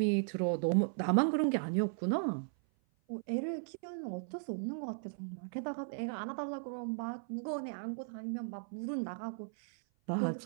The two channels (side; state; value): left; silent; 53 dB below the other